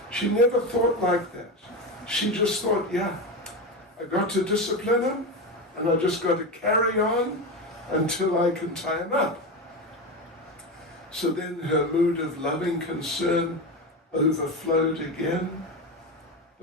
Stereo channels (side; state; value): both; normal; correlation 0.18